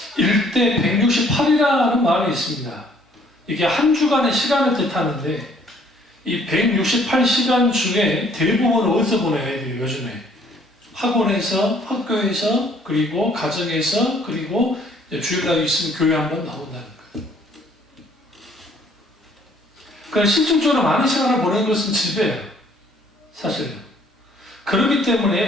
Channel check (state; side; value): normal; both; correlation 0.61